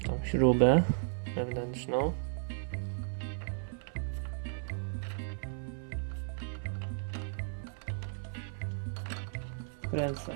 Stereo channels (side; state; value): left; silent; 55 dB below the other